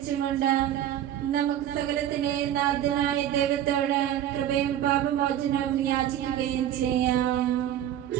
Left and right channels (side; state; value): left; quieter; 11.3 dB